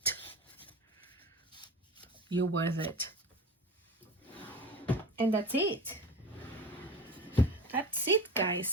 You're worth it. And that's it. That's it,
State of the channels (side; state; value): both; normal; correlation 0.32